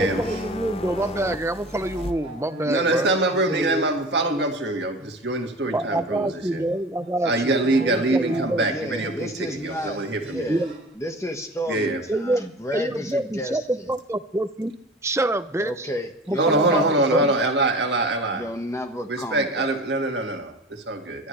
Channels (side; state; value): both; normal; correlation 0.39